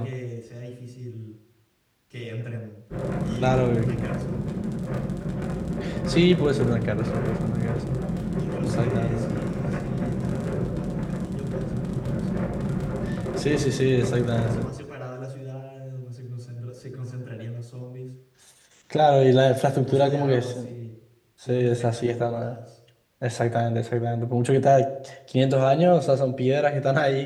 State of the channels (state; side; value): identical; both; correlation 1.00